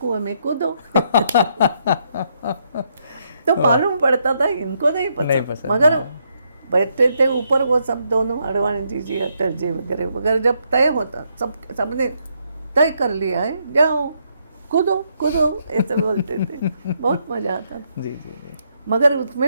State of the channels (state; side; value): inverted; both; correlation -0.76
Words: में कूदो। तो मालूम पड़ता था इनको नहीं पसंद, मगर बैठते थे ऊपर वो सब दोनों, अडवाणी जी, अटल जी वगैरह वगैरह, जब तय होता, सबने तय कर लिया है, जाओ कूदो कूदो, ऐसे बोलते थे। बहुत मजा आता था। जी जी जी, मगर